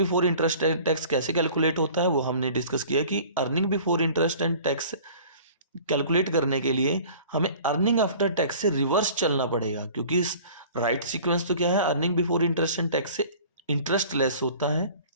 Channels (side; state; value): both; inverted; correlation -0.46